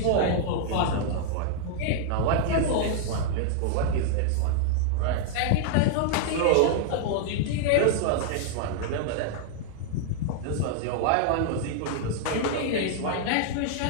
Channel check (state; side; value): different; both; correlation -0.01